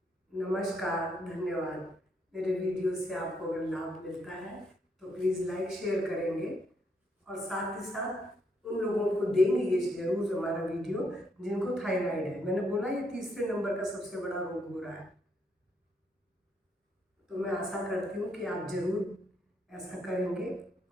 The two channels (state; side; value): normal; both; correlation 0.74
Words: नमस्कार, धन्यवाद। मेरे वीडियो से आपको अगर लाभ मिलता है तो प्लीज़ लाइक शेयर करेंगे, और साथ ही साथ उन लोगों को देंगे ये ज़रूर हमारा वीडियो जिनको थायराइड है। मैंने बोला ये तीसरे नंबर का सबसे बड़ा रोग हो रहा है। तो मैं आशा करती हूँ कि आप ज़रूर ऐसा करेंगे